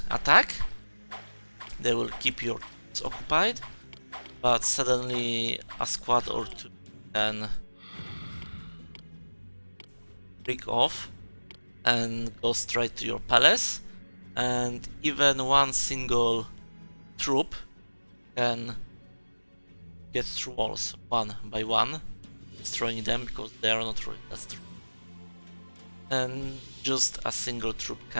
attack, they will keep your troops occupied, but suddenly a squad or two can break off and go straight to your palace, and even one single troop can get through walls one by one, destroying them because they are not really that strong. And just a single troop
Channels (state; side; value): inverted; both; correlation -1.00